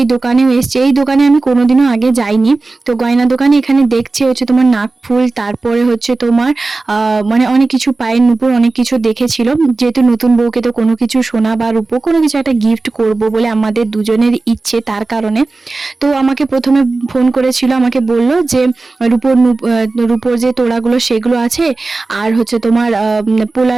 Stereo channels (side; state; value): left; quieter; 3.5 dB